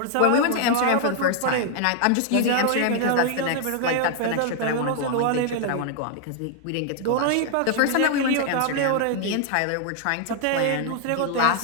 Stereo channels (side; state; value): both; different; correlation 0.00